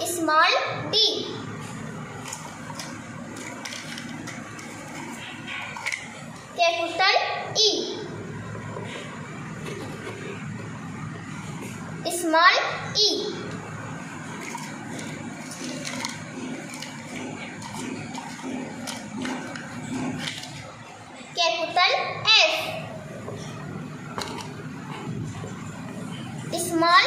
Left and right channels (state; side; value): identical; both; correlation 1.00